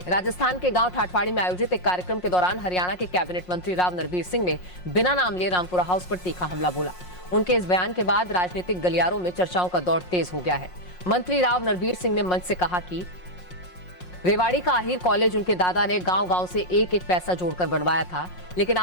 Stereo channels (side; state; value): right; late; 5.5 ms